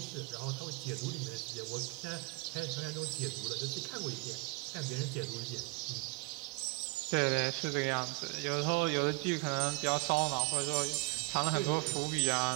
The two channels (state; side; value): quieter; left; 28.9 dB